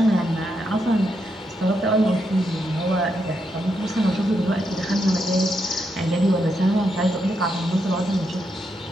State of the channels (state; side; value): normal; both; correlation 0.81